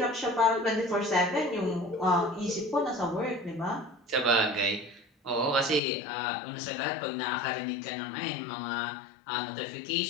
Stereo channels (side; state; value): right; drops out; at 5.8 s